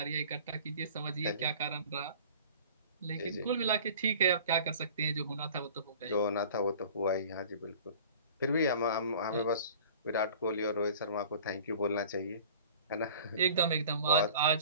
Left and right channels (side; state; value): both; inverted; correlation -0.45